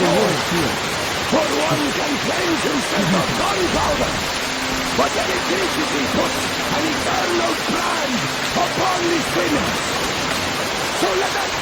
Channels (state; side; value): identical; both; correlation 1.00